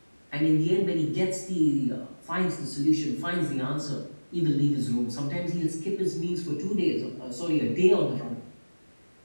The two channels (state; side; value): inverted; both; correlation -1.00